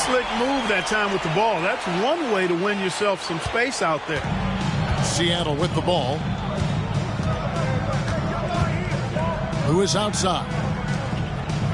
move that time with the ball. That's one way to win yourself some space out there. Seattle with the ball. Lewis outside.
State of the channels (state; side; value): identical; both; correlation 1.00